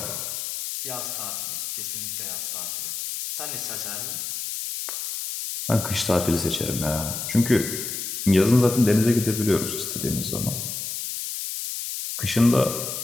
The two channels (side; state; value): left; noise; hiss, 5 dB below the sound